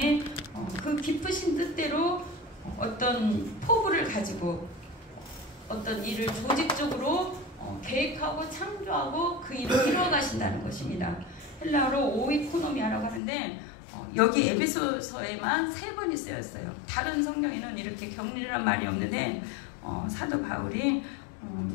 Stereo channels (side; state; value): right; drops out; at 13.2 s